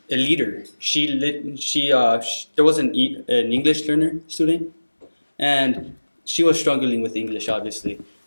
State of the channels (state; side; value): inverted; both; correlation -1.00